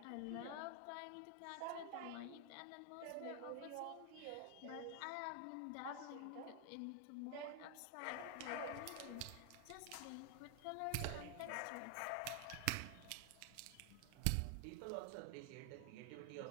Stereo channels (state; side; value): different; both; correlation 0.00